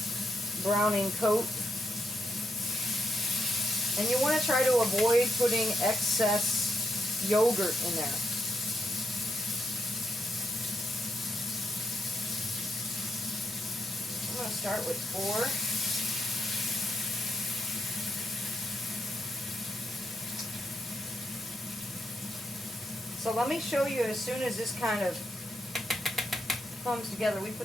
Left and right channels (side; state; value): both; normal; correlation 0.81